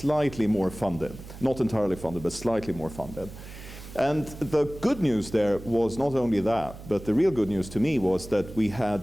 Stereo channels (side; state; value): right; noise; hum, 15 dB below the sound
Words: more funded, not entirely funded, but slightly more funded. And the good news there was not only that, but the real good news to me was that